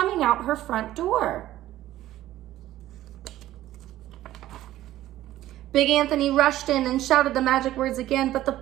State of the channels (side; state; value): left; quieter; 14.3 dB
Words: out her front door. Big Anthony rushed in and shouted the magic words again, but the